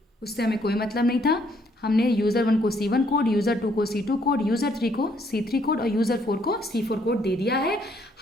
उससे हमें कोई मतलब नहीं था। हमने यूज़र 1 को C1 कोड, यूज़र 2 को C2 कोड, यूज़र 3 को C3 कोड और यूज़र 4 को C4 कोड दे दिया है।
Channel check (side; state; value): both; normal; correlation 0.68